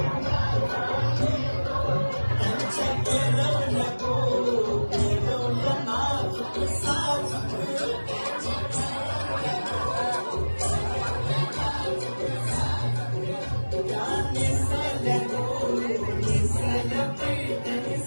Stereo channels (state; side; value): inverted; both; correlation -1.00